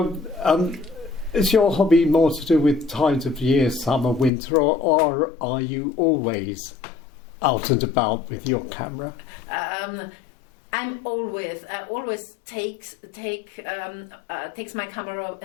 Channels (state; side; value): drops out; right; at 4.3 s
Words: is your hobby more to do with times of year, summer, winter, or are you always out and about with your camera? I always take my camera